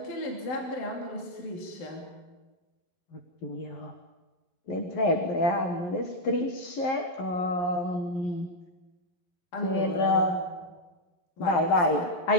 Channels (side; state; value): right; late; 11 ms